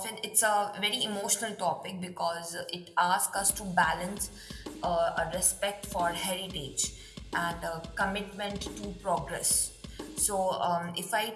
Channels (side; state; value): both; identical; correlation 1.00